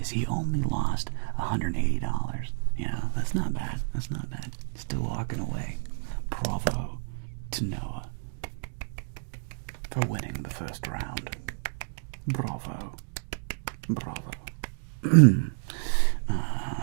So he only lost $180. Yeah, that's not bad. That's not bad. Still walking away. Bravo to Noah for winning the first round. Bravo.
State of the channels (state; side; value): silent; left; digital silence